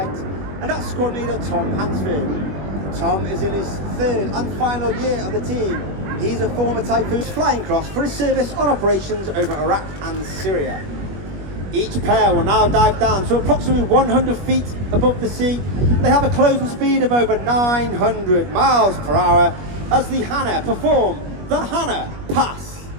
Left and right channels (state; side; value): late; left; 21 ms